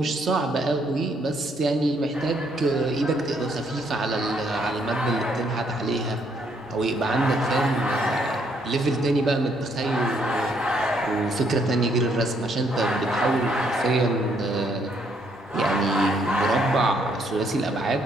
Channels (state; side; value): normal; both; correlation 0.70